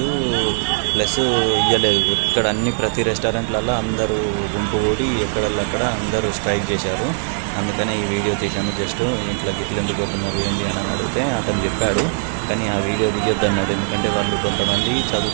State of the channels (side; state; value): left; silent; 62 dB below the other